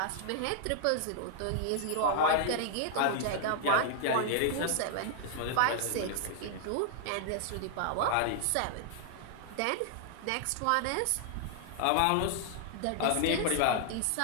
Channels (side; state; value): both; different; correlation -0.01